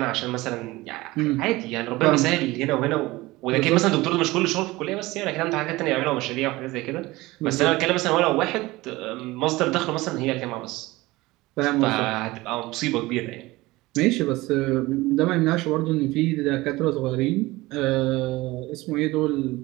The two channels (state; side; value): quieter; left; 20.0 dB